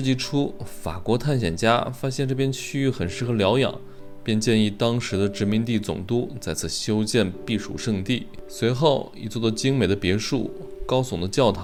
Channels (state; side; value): identical; both; correlation 1.00